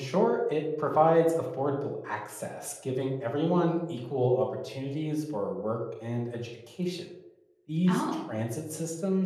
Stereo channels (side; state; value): both; identical; correlation 1.00